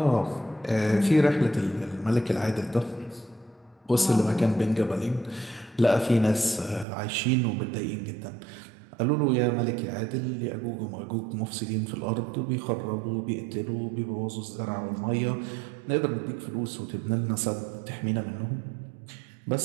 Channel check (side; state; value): left; drops out; at 6.9 s